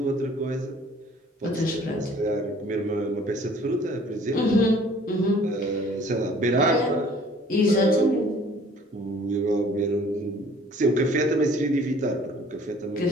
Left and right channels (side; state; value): both; normal; correlation 0.54